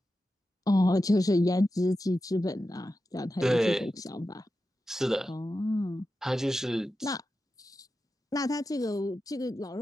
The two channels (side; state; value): both; normal; correlation 0.91